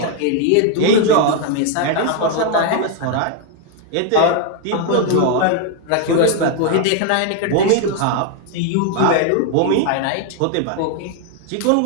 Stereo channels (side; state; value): both; different; correlation 0.00